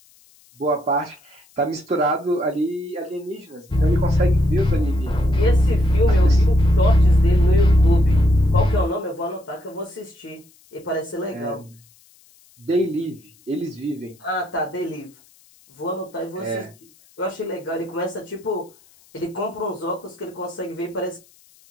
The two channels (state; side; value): noise; left; hiss, 29 dB below the sound